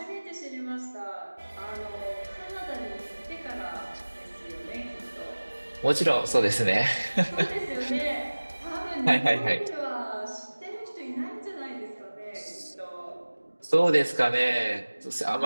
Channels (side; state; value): both; inverted; correlation -1.00